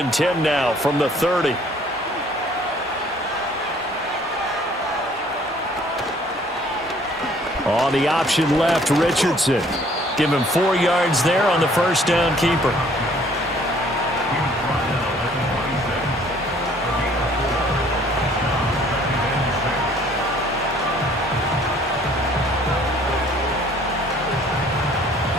10 now from the 30. On the option left, Richardson. Give him 4 yards there on the first down keeper.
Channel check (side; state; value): both; normal; correlation 0.58